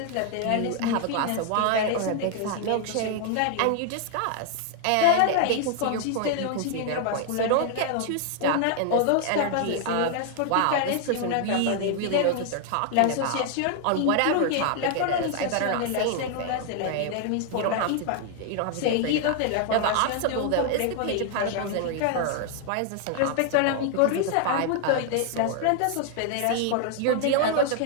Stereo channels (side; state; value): both; different; correlation 0.00